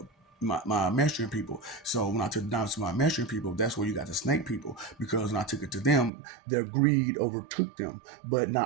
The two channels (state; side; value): drops out; left; at 6.1 s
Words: my Mestrian people. So when I took the diamonds to my Mestrian people, that's where you got the snake people. Because when I took it to them, their greed overtook them. But